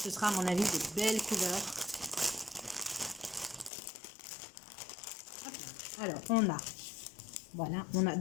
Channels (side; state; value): right; drops out; at 3.7 s